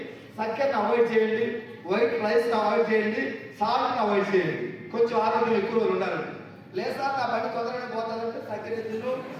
చక్కెరని అవాయిడ్ చేయండి, వైట్ రైస్ని అవాయిడ్ చేయండి, సాల్ట్ని అవాయిడ్ చేయండి, కొంచెం ఆరోగ్యం ఎక్కువ రోజులు ఉండాలండి. లేదా నా పని తొందరగా పోతానంటే చక్కెర తిను,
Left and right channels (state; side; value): identical; both; correlation 1.00